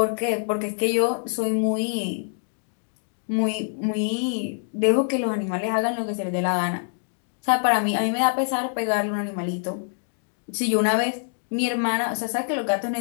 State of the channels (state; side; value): silent; right; digital silence